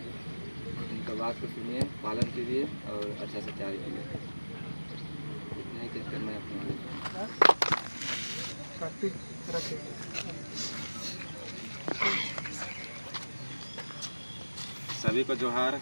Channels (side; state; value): both; inverted; correlation -1.00